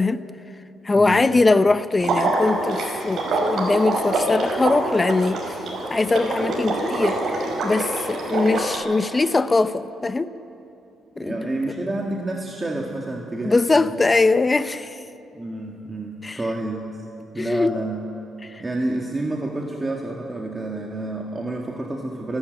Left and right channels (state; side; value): normal; both; correlation 0.89